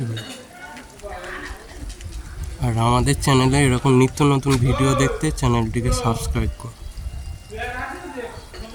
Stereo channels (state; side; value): identical; both; correlation 1.00